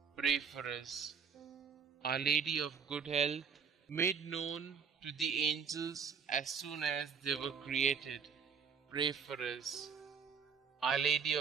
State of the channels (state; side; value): quieter; left; 6.5 dB